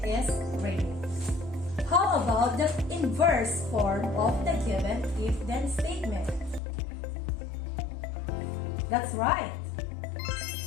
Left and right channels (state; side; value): drops out; right; at 6.6 s